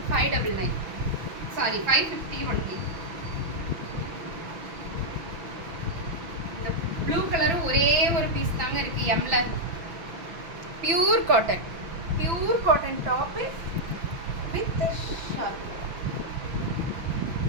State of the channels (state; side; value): late; left; 6.0 ms